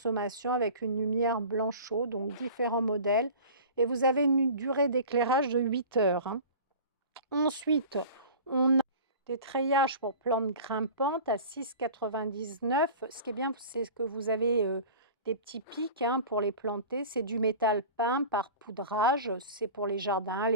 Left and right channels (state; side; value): inverted; both; correlation -0.39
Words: avec une lumière blanchot, donc différents modèles. Et vous avez une durée d'éclairage de 8 heures, hein. Ensuite, on a des treillages pour plantes grimpantes à 6,99 €. Ce qui est bien, c'est que vous avez des petits pics, hein, pour les planter. C'est du métal peint par poudrage. C'est pour les jardins,